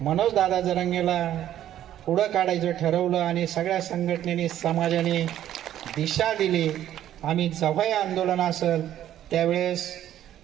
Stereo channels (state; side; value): quieter; left; 11.8 dB